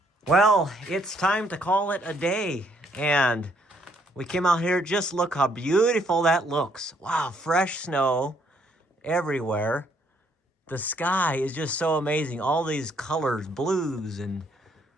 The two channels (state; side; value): normal; both; correlation 0.69